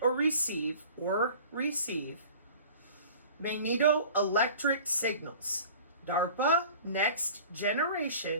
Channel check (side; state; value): both; inverted; correlation -0.44